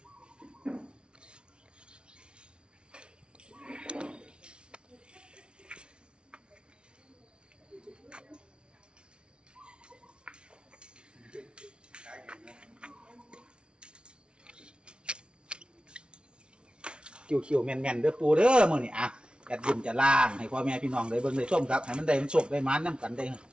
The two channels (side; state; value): left; late; 0.057 ms